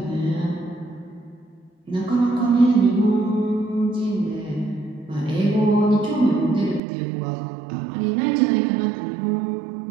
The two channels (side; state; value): left; drops out; at 6.8 s